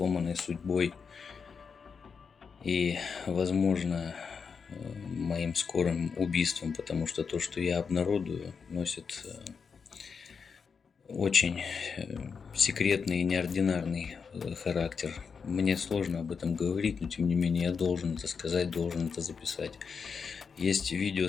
судьбой и, возможно, моим скорым убийством, потому что то, что я обнародую, носит очень секретный и неординарный характер. Мне сложно об этом говорить, но тем не менее я должен это сказать, должен это записать. Есть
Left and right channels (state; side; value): quieter; right; 5.8 dB